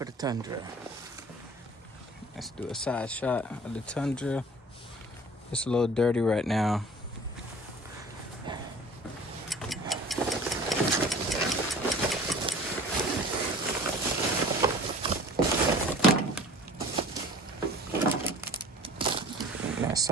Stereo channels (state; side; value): normal; both; correlation 0.45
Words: the Tundra. Let's do a side shot of the Tundra. It's a little dirty right now. That's